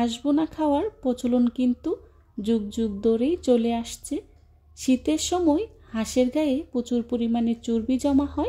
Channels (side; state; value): both; identical; correlation 1.00